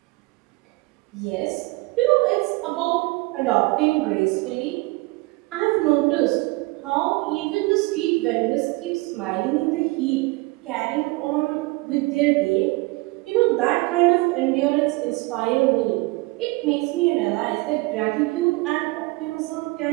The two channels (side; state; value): left; quieter; 23.7 dB